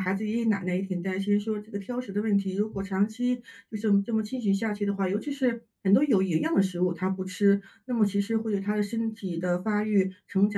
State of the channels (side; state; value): both; identical; correlation 1.00